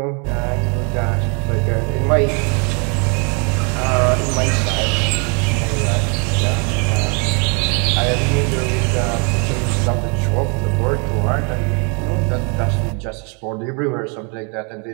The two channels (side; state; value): left; quieter; 35.5 dB